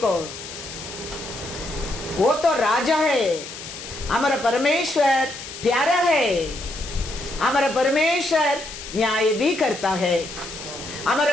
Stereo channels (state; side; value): noise; left; hiss, 11 dB below the sound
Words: वो तो राजा है, हमारा परमेश्वर प्यारा है, हमारा परमेश्वर न्याय भी करता है,